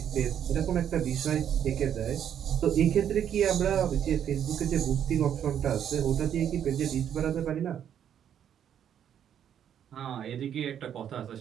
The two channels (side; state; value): left; quieter; 9.3 dB